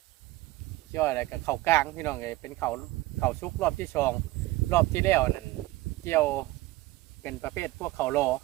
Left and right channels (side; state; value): left; quieter; 18.5 dB